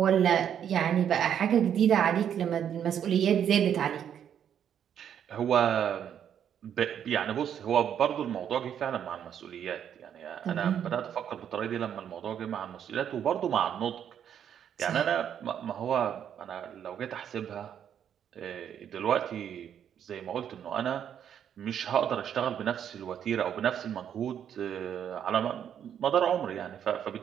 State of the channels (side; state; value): left; quieter; 9.1 dB